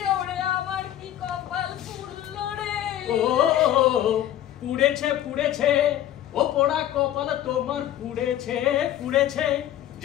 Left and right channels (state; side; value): quieter; right; 12.2 dB